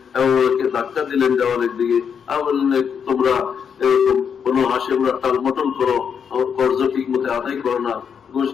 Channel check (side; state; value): right; quieter; 7.1 dB